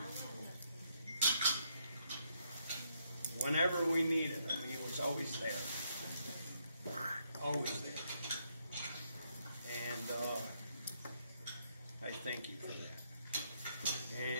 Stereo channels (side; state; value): both; inverted; correlation -0.74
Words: whenever we needed him, he was always there. Always there. And I thank you for that.